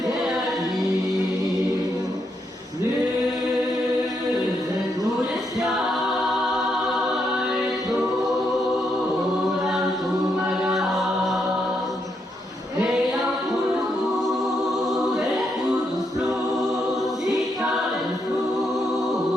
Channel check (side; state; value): both; normal; correlation 0.79